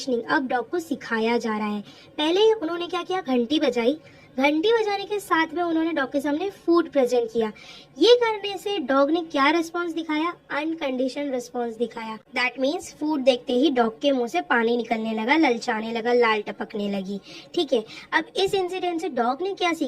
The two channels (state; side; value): identical; both; correlation 1.00